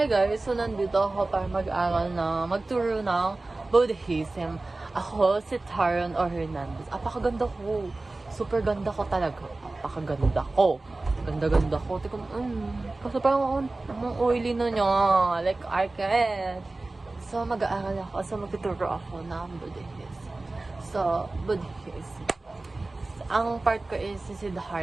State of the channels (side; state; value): left; quieter; 3.1 dB